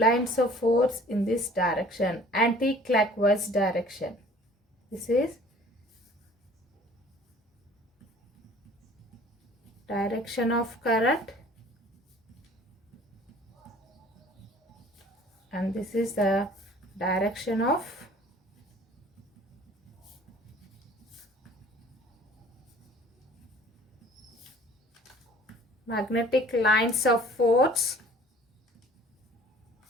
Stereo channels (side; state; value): both; normal; correlation 0.50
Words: of force in this direction, anti-clockwise direction. This is direction of current and this is the direction of magnetic lines of force,